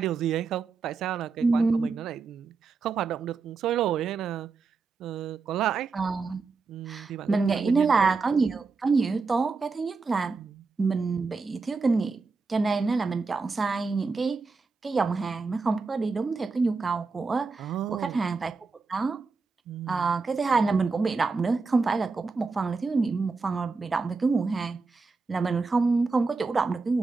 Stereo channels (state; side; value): quieter; left; 4.4 dB